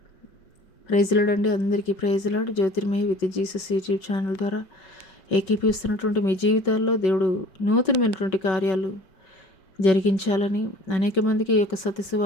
ప్రైజ్ లార్డ్ అండి. అందరికీ praise lord. Jyothirmayi with Jesus YouTube channel ద్వారా ఏకీపిస్తున్నటువంటి మీ జీవితాల్లో దేవుడు నూతనమైనటువంటి కార్యాలు జరిగించాలని అనేక మందికి ఈ యొక్క సత్య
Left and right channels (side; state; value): right; late; 5.3 ms